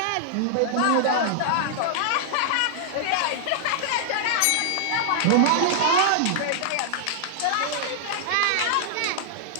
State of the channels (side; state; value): both; different; correlation -0.01